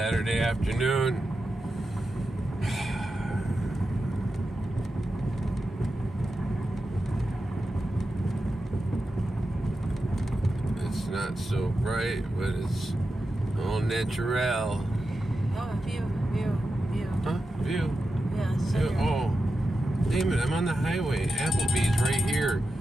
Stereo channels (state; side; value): normal; both; correlation 0.90